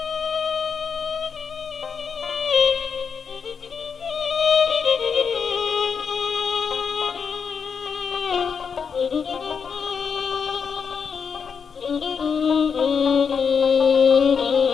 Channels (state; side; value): quieter; right; 6.3 dB